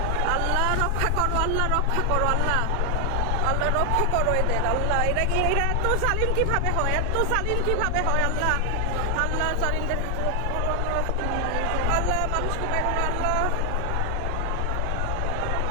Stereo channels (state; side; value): different; both; correlation 0.00